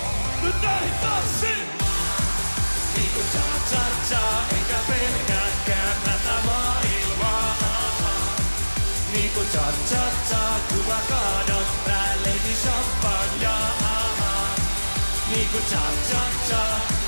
Nyt näin tanssin! Niinku cha-cha-cha, enkä pelkääkään tätä maailmaa. Niinku cha-cha-cha, kun mä kaadan päälleni champagnea. Niinku cha-cha-cha,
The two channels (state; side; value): inverted; both; correlation -1.00